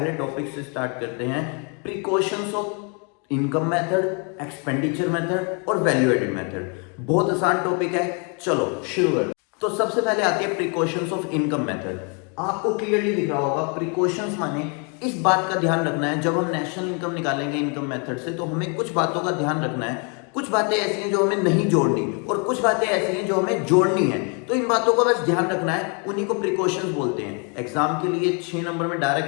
टॉपिक से स्टार्ट करते हैं। Precautions of income method, expenditure method और वैल्यू एडेड मेथड। बहुत आसान टॉपिक है, चलो शुरू करते। तो सबसे पहले आती है प्रिकॉशंस ऑफ इनकम मेथड। आपको क्लियरली दिख रहा होगा, प्रिकॉशंस माने इस बात का ध्यान रखना है, जब हम नेशनल इनकम निकालेंगे इनकम मेथड से, तो हमें कुछ बातों का ध्यान रखना है। कुछ बातें ऐसी हैं जो हमें नहीं जोड़नी और कुछ बातें ऐसी हैं जो हमें जोड़नी है। तो इन बातों का बस ध्यान रखना है, उन्हीं को प्रिकॉशंस बोलते हैं। एग्जाम के लिए 6 नंबर में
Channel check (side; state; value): right; quieter; 36.3 dB